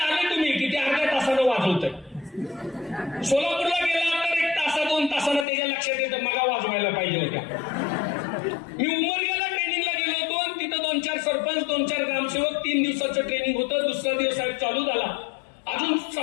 वाजवतोय. सोलापूरला गेला तर 1 तासा 2 तासानं त्याच्या लक्षात येतं मगा वाजवायला पाहिजे होत्या. मी उमरग्याला ट्रेनिंगला गेलो होतो आणि तिथं 2-4 सरपंच 2-4 ग्रामसेवक 3 दिवसाचं ट्रेनिंग होतं. दुसरा दिवस साहेब चालू झाला, अजून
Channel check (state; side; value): drops out; right; at 5.5 s